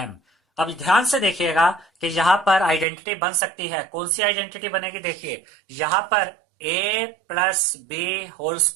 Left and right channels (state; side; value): drops out; left; at 2.9 s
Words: अब ध्यान से देखिएगा कि यहां पर आइडेंटिटी बन सकती है। कौन सी आइडेंटिटी बनेगी, देखिए यहां पर a plus B whole